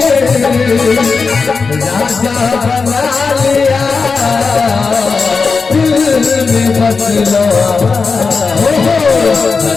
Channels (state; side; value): quieter; right; 4.7 dB